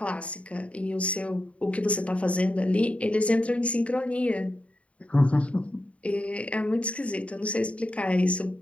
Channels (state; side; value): late; right; 0.063 ms